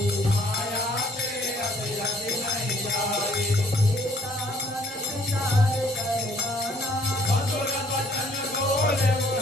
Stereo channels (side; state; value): both; normal; correlation 0.61